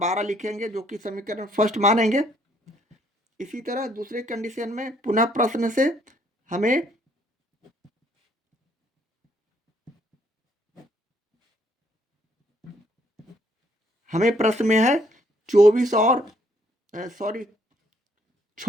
लिखेंगे, जो कि समीकरण फर्स्ट मानेंगे। इसी तरह दूसरे कंडीशन में पुनः प्रश्न से हमें प्रश्न में है 24 और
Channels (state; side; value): normal; both; correlation 0.67